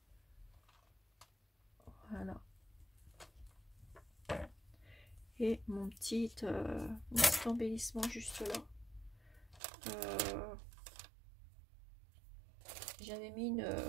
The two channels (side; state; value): left; drops out; at 9.6 s